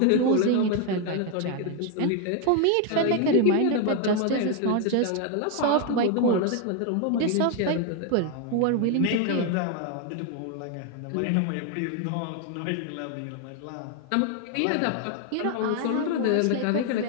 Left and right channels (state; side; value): different; both; correlation 0.01